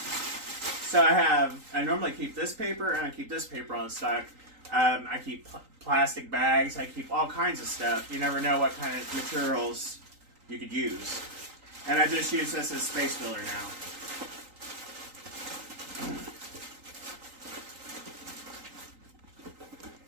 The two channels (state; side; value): late; left; 3.8 ms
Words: So I normally keep this paper and I keep this paper on stock. I keep plastic bags. I keep all kinds of stuff. You never know what kind of materials you could use. And I just use this as space filler now.